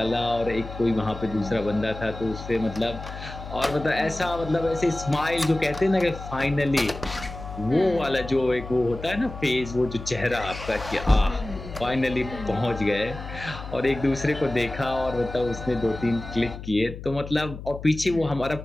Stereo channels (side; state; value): left; noise; hum, 11 dB below the sound